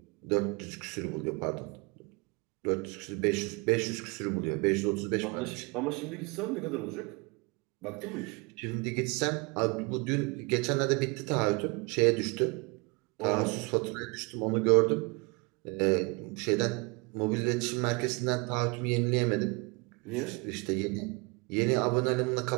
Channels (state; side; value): quieter; left; 29.1 dB